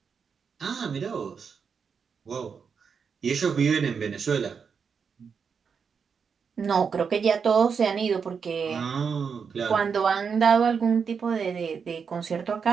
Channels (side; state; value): left; quieter; 6.1 dB